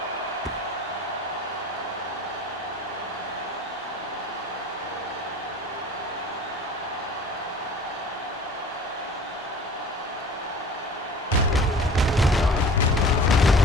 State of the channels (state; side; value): normal; both; correlation 0.43